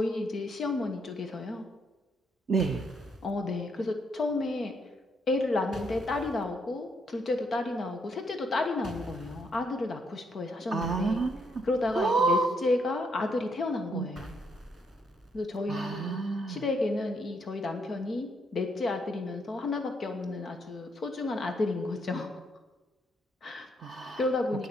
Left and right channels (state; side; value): normal; both; correlation 0.74